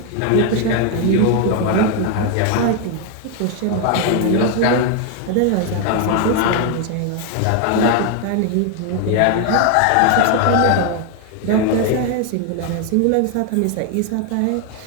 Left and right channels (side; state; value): both; different; correlation 0.01